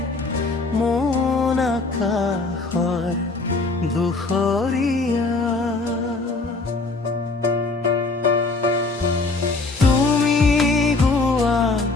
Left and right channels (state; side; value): quieter; right; 3.6 dB